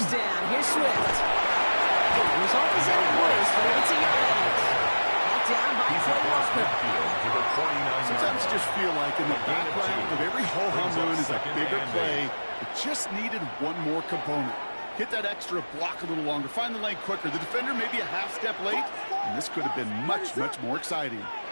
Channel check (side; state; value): both; inverted; correlation -1.00